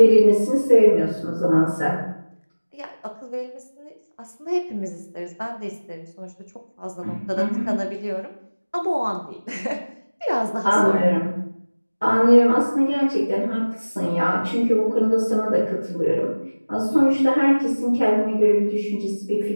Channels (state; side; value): inverted; both; correlation -1.00